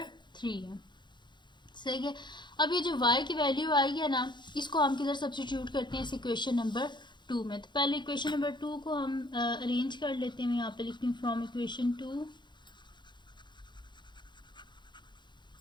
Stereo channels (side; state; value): right; late; 0.22 ms